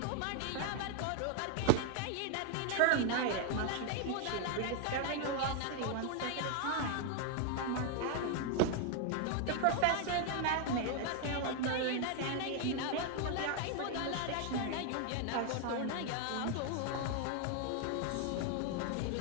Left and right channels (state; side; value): different; both; correlation 0.00